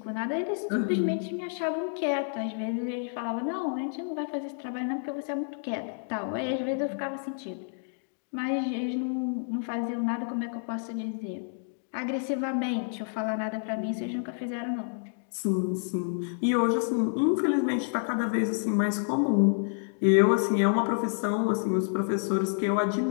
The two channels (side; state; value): right; silent; digital silence